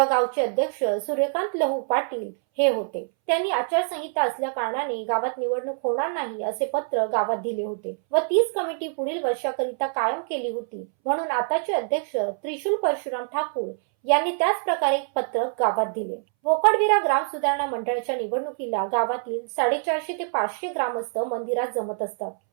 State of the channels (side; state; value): left; silent; 62 dB below the other